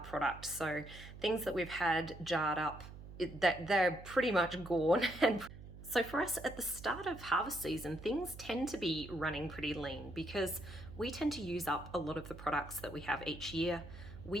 So things that we've had jarred up, that they're pretty much gone. And so for us at the start of harvest season, things tend to be running pretty lean because we tend to use up a lot of the products that we have each year.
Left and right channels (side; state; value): right; noise; hum, 14 dB below the sound